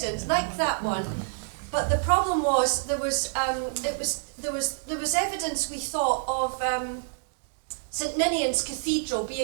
like that one, But the problem was there was evidence, we thought, of St Ninian's Cathedral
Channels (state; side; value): silent; left; digital silence